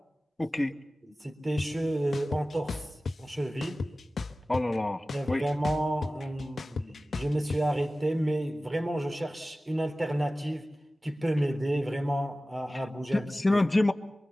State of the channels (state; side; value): normal; both; correlation 0.96